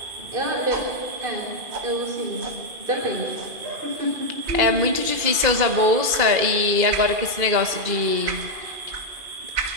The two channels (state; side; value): late; left; 2.5 ms